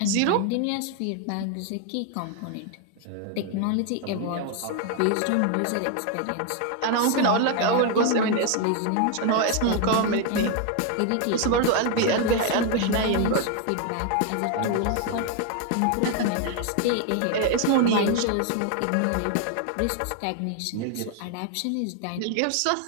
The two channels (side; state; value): both; different; correlation 0.01